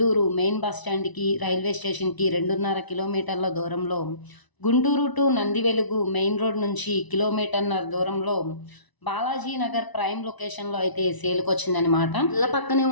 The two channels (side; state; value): right; late; 1.0 ms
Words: మెయిన్ బస్ స్టాండ్కి, రైల్వే స్టేషన్కి 2.5 కిలోమీటర్ల దూరంలో, Guntur to Nandivelugu main road నుంచి 1.5 కిలోమీటర్ల దూరంలో బాలాజీ నగర్ ప్రైమ్ లొకేషన్లో అయితే సేల్కి వచ్చిందనమాట. ఇళ్ళ పక్కనే